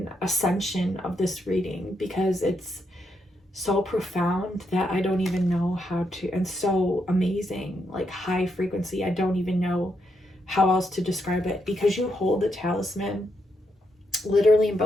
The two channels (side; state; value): both; normal; correlation 0.80